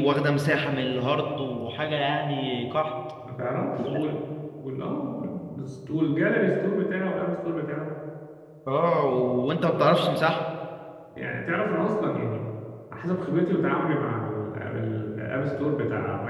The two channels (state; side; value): identical; both; correlation 1.00